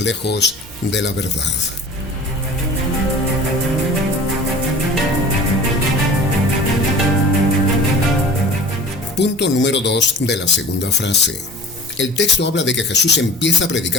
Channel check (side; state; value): both; normal; correlation 0.41